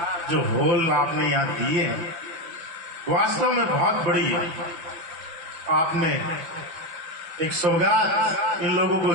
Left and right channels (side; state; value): left; late; 6.0 ms